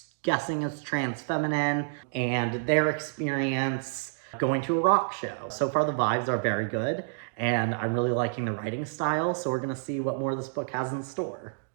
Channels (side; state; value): left; silent; digital silence